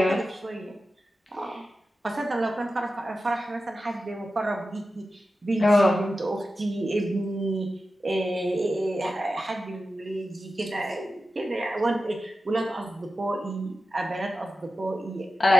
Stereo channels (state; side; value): normal; both; correlation 0.92